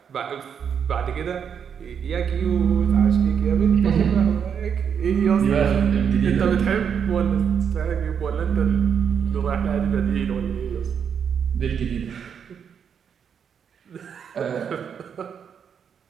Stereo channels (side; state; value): left; quieter; 7.5 dB